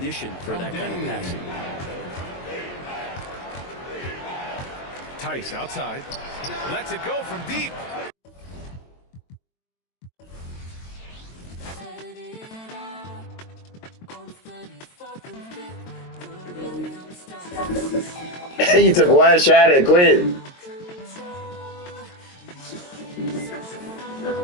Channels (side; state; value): right; late; 22 ms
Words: for that kind of passing. Tice outside. Lets it go from deep. You took one shot and quit.